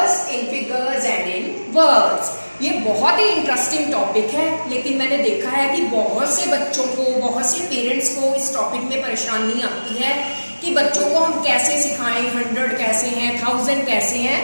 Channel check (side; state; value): both; inverted; correlation -1.00